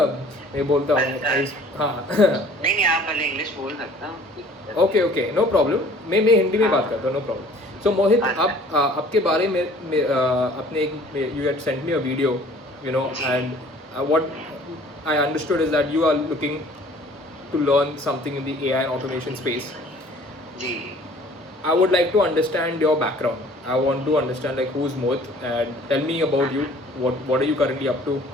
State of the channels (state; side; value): normal; both; correlation 0.52